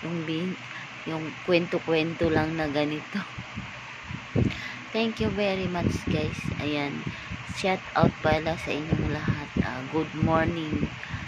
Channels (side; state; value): both; identical; correlation 1.00